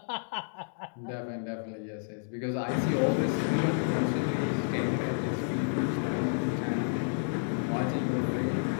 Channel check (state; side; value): silent; right; digital silence